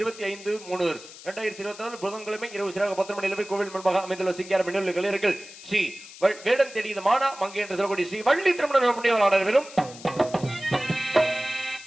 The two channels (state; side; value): noise; left; hiss, 17 dB below the sound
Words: புதன்கிழமை இரவு சிறாக 10 மணி அளவில் கோவில் முன்பாக அமைந்துள்ள சிங்கார மின்னல் கலைஞர்கள் ஸ்ரீ வேடம் தேடியது மானா மங்கை என்று சொல்லக்கூடிய ஸ்ரீ வள்ளி திருமண புண்ணியவாளர் வெறும்